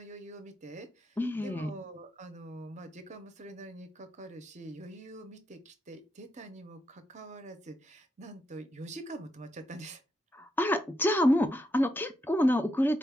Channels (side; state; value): both; normal; correlation 0.82